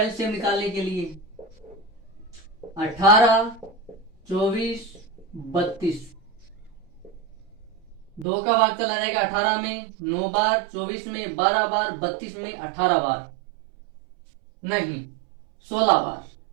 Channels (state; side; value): drops out; left; at 8.2 s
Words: निकालने के लिए 18, 24, 32, 2 का भाग चला जाएगा 18 में 9 बार, 24 में 12 बार, 32 में 18 बार, नहीं 16 बार।